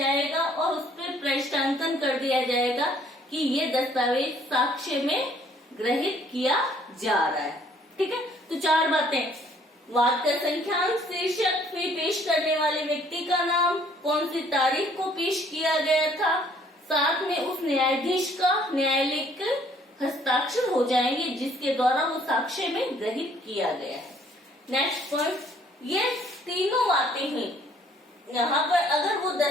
और उस पर प्रश्नांकन कर दिया जाएगा कि ये दस्तावेज साक्ष्य में ग्रहित किया जा रहा है। ठीक है, तो चार बातें, वाद का संख्यांक, शीर्षक, फिर पेश करने वाले व्यक्ति का नाम, कौन सी तारीख को पेश किया गया था, साथ में उस न्यायाधीश का न्यायालय के हस्ताक्षर हो जाएंगे जिसके द्वारा वो साक्ष्य में ग्रहित किया गया है। नेक्स्ट पॉइंट, ये तीनों बातें हैं। यहाँ पर अगर वो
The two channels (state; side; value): normal; both; correlation 0.61